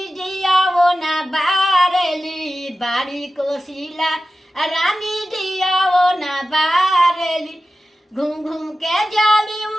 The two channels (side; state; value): both; normal; correlation 0.93